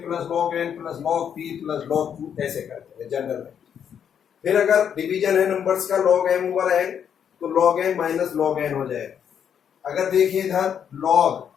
log N plus log P plus log Q ऐसे करते हैं जनरल में। फिर अगर डिवीजन है नंबर्स का लॉग एम ओवर एन, तो log M minus log N हो जाएगा। अगर देखिए इधर लॉग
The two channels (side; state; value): right; quieter; 8.3 dB